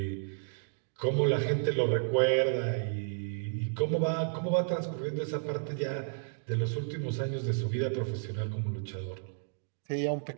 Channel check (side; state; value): left; silent; digital silence